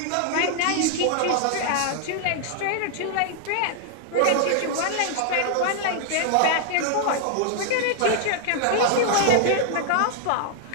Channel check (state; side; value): different; both; correlation 0.00